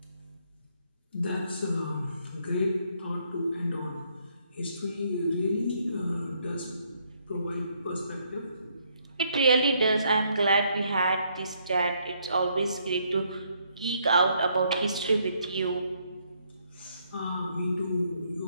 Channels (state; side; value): inverted; both; correlation -0.71